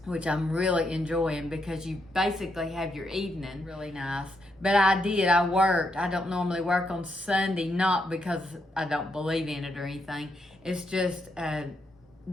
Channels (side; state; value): both; normal; correlation 0.79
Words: which I'm really enjoying because you basically have your evening. Really nice. But I worked. I don't normally work on Sunday, not because I don't believe in it or anything. It's just,